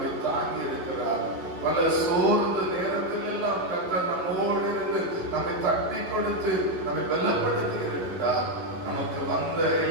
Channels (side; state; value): left; late; 11 ms